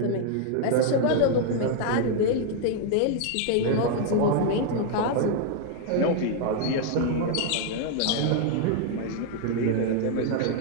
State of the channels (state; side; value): different; both; correlation 0.00